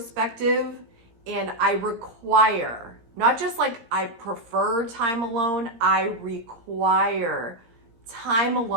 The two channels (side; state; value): left; late; 17 ms